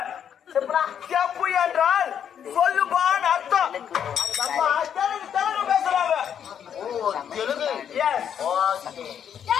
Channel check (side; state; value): right; quieter; 8.7 dB